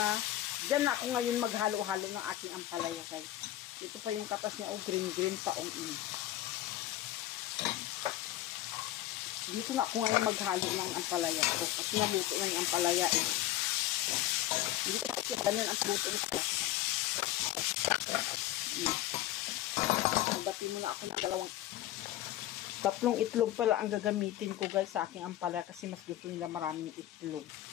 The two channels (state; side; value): quieter; right; 14.3 dB